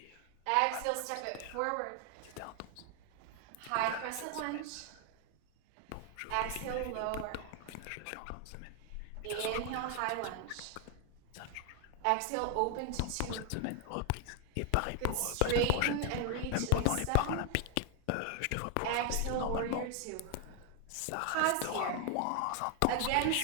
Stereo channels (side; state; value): both; different; correlation 0.00